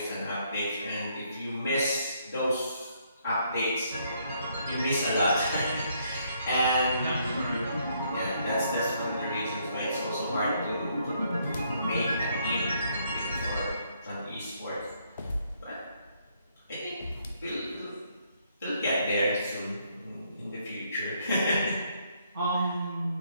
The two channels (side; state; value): both; inverted; correlation -0.71